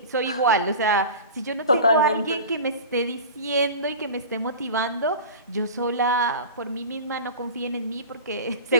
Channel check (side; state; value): both; inverted; correlation -0.34